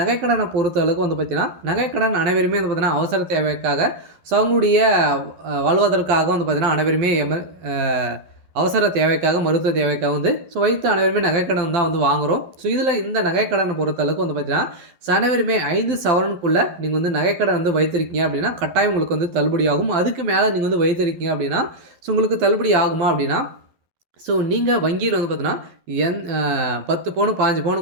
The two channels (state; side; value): late; left; 11 ms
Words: பொறுத்த அளவுக்கு வந்து பார்த்தீங்கன்னா, நகைக்கடன் அனைவருமே வந்து பார்த்தீங்கன்னா, அவசர தேவைக்காக அவங்களுடைய வாழ்வதற்காக வந்து பார்த்தீங்கன்னா, அனைவருமே அ அவசர தேவைக்காக, மருத்துவ தேவைக்காக வந்து வைத்து அனைவருமே நகைக்கடன் தான் வந்து வாங்குறோம். இதில இந்த நகைக்கடன பொறுத்த அளவுக்கு வந்து பார்த்தீங்கன்னா, அனைவருமே 5 சவரனுக்குள்ள நீங்க வந்து நகைக்கடன் வந்து வைத்திருக்கீங்க அப்படின்னா, கட்டாயம் உங்களுக்கு வந்து தள்ளுபடி ஆகும். அதுக்கு மேல நீங்க வந்து வைத்திருக்கீங்க அப்படின்னா, உங்களுக்கு தள்ளுபடி ஆகுமா அப்படின்னா, நீங்க வங்கியில வந்து பார்த்தீங்கன்னா, 10 பவுனு, 15 பவுனு